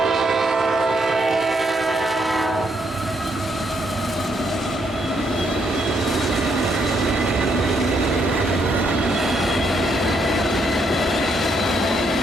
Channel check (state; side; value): normal; both; correlation 0.75